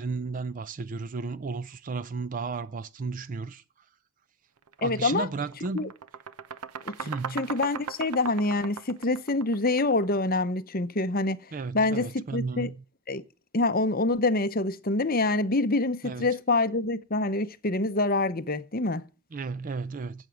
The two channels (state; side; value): normal; both; correlation 0.11